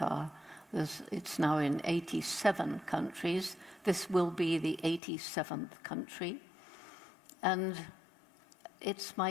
It's now in 87 countries. This will be the 87th country. And it's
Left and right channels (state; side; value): drops out; right; at 5.0 s